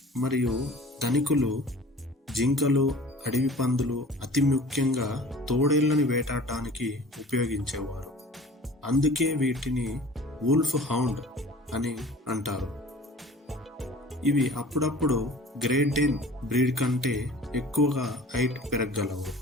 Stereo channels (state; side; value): normal; both; correlation 0.45